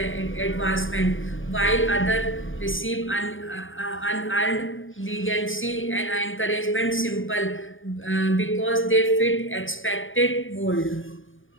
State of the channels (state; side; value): late; right; 0.58 ms